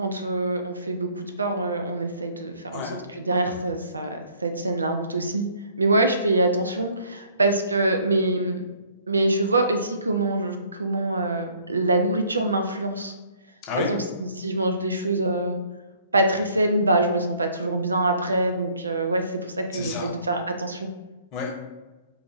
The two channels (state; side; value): inverted; both; correlation -0.60